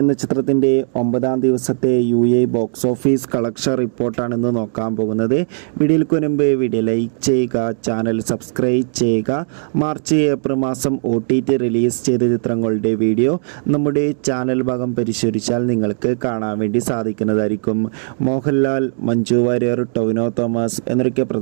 ചിത്രത്തിൻ്റെ 9-ാം ദിവസത്തെ ബോക്സ് ഓഫീസ് കളക്ഷൻ റിപ്പോർട്ടാണ് ഇന്ന് നോക്കാൻ പോകുന്നത്. വീഡിയോയ്ക്ക് മുൻപ് വീഡിയോ ലൈക്ക് ചെയ്യുക, ചാനൽ സബ്സ്ക്രൈബ് ചെയ്യുക. മാർച്ച് ഏപ്രിൽ മാസം OTT റിലീസ് ചെയ്ത ചിത്രങ്ങളുടെ വീഡിയോ നമ്മുടെ ചാനൽ ഭാഗം പരിശോധിച്ചാൽ നിങ്ങൾക്ക് കാണാൻ വേണ്ടി സാധിക്കുന്നതായിരിക്കും. മോഹൻലാൽ, മഞ്ജു വാര്യർ, ടൊവിനോ തോമസ് എന്നൊക്കെ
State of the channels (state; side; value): silent; left; digital silence